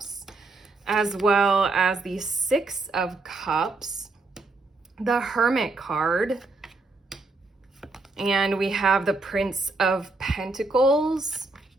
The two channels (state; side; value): quieter; left; 3.4 dB